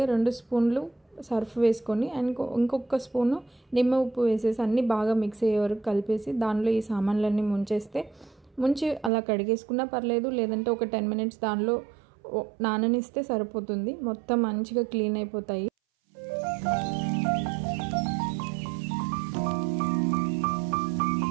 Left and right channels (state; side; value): drops out; left; at 9.1 s